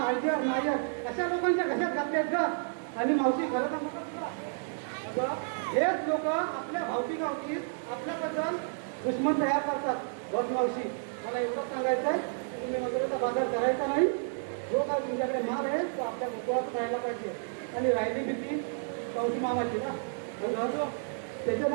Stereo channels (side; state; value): left; silent; digital silence